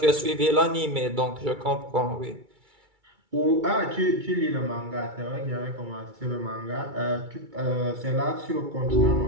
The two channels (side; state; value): left; late; 2.3 ms